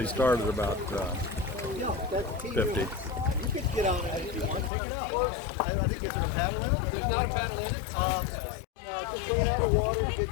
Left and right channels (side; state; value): right; drops out; at 4.7 s